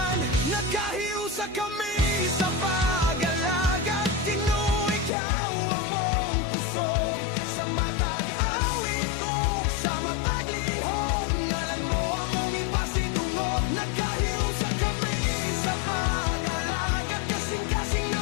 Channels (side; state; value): right; drops out; at 5.1 s